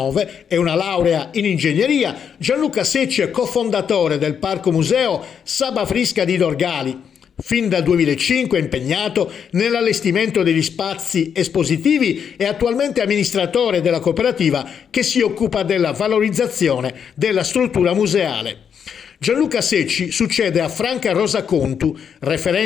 e una laurea in ingegneria, Gianluca Secci è cofondatore del Parco Museo Saba Frisca di Dorgali. Fin dal 2005 è impegnato nell'allestimento degli spazi espositivi e attualmente amministratore della cooperativa che si occupa della valorizzazione della struttura museale. Gianluca Secci succede a Franca Rosa Contu,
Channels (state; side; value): quieter; right; 7.6 dB